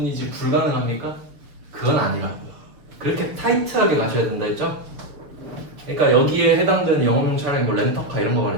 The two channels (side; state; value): left; late; 6.7 ms